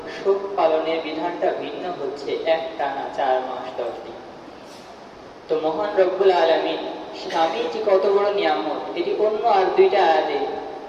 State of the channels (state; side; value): identical; both; correlation 1.00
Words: শোক পালনের বিধানটা ভিন্ন হচ্ছে একটানা 4 মাস 10 দিন। তো মহান রব্বুল আলামিন স্বামী যে কত বড় নিয়ামত, এটি অন্য আর 2টা আয়াতে